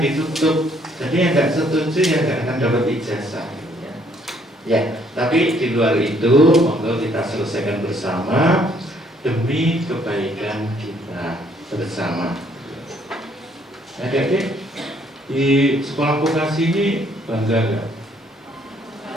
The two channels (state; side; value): normal; both; correlation 0.66